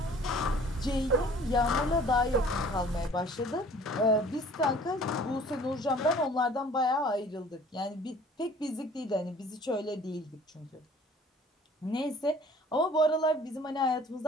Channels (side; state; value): both; normal; correlation 0.51